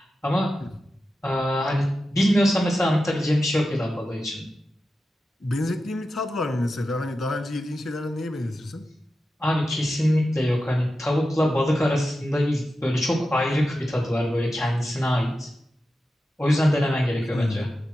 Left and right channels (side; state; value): both; normal; correlation 0.91